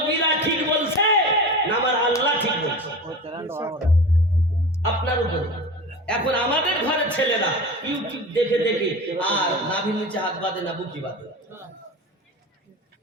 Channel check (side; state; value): both; normal; correlation 0.32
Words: ঠিক বলছে না আমার আল্লাহ ঠিক বলছে? আপনার উপরে। এখন আমাদের ঘরের ছেলেরা ইউটিউব দেখে দেখে আর নাভির নিচে হাত বাঁধে না বুকি বাঁধে,